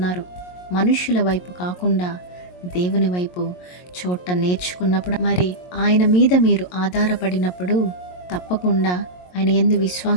మనుషుల వైపు కాకుండా దేవుని వైపు చూడటం నేర్చుకున్నప్పుడు, మరి ఆయన మీద మీరు ఆధారపడినప్పుడు తప్పకుండా ఆయన యందు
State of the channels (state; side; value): late; right; 22 ms